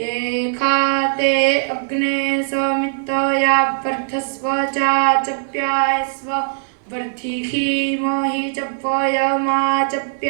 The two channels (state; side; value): silent; left; 66 dB below the other